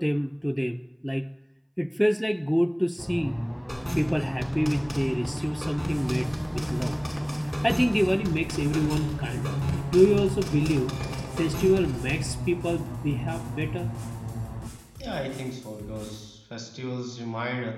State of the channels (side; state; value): both; identical; correlation 1.00